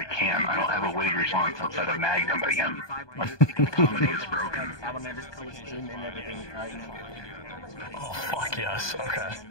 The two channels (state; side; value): late; right; 1.2 ms